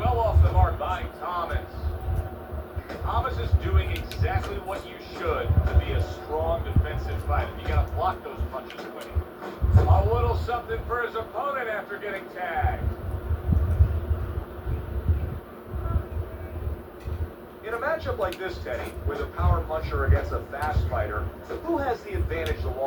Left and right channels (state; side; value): identical; both; correlation 1.00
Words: off the mark by Thomas. Thomas is doing exactly what you should to be a strong defensive fighter. You got to block those punches away. A little something for his opponent after getting tagged. In a matchup like this, Teddy, with a power puncher against a fast fighter, who has the advantage the